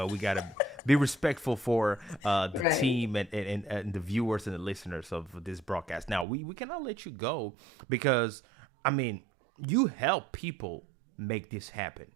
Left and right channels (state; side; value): drops out; left; at 6.2 s